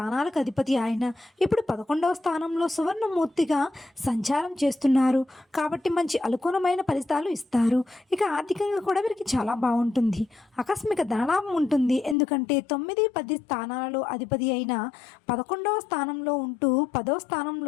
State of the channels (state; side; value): drops out; right; at 12.2 s